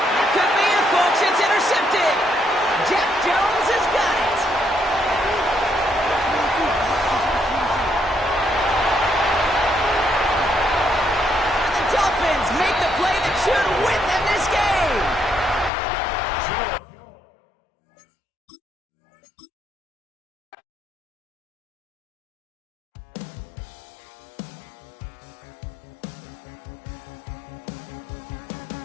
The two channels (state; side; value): drops out; right; at 15.7 s